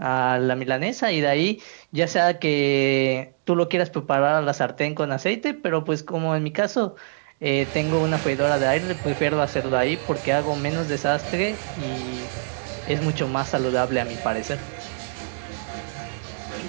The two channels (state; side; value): silent; left; digital silence